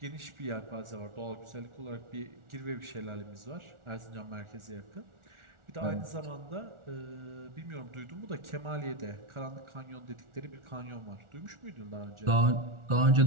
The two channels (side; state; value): left; late; 1.4 ms